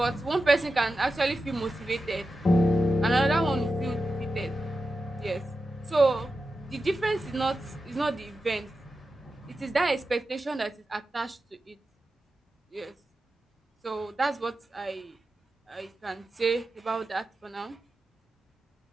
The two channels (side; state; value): both; normal; correlation 0.91